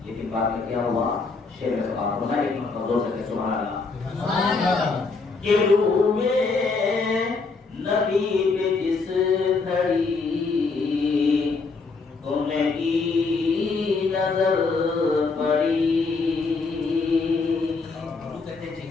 لیکن بعد میں کیا ہوا؟ شیر میں سبحان اللہ، ایک مرتبہ زور سے کہ سبحان اللہ، کہ روئے نبی پہ جس گھڑی ان کی نظر پڑی،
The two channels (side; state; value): right; quieter; 4.3 dB